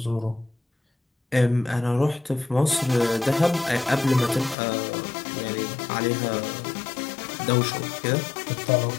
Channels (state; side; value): drops out; right; at 4.5 s